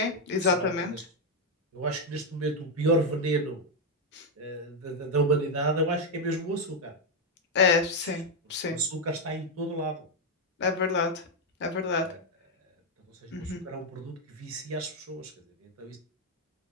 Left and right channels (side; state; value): both; normal; correlation 0.03